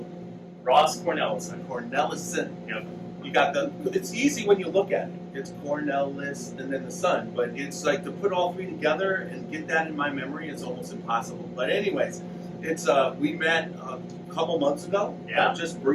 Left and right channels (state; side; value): identical; both; correlation 1.00